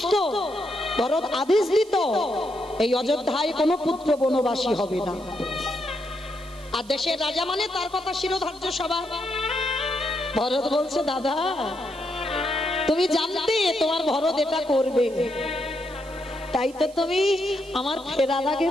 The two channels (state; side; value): noise; right; hiss, 23 dB below the sound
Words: ভরত আদেশ দিত এই অযোধ্যায় কোনো পুত্র বনবাসী হবে না, আর দেশের রাজা মানে তার কথা শিরোধার্য সবার। ভরত বলছে, দাদা তুমি জানতে তোমার ভরত এটা করবে, তাই তো তুমি আমার ফেরার আগে